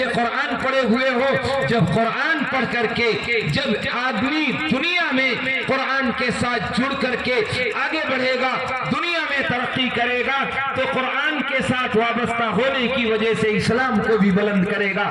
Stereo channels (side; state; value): both; identical; correlation 1.00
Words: قرآن پڑھے ہوئے ہو؟ جب قرآن پڑھ کر کے جب آدمی دنیا میں قرآن کے ساتھ جڑ کر کے آگے بڑھے گا, دنیا میں ترقی کرے گا, تو قرآن کے ساتھ وابستہ ہونے کی وجہ سے اسلام کو بھی بلند کرے گا.